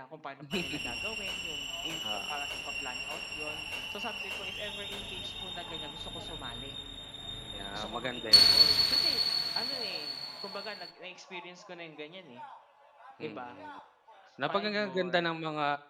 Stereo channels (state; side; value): identical; both; correlation 1.00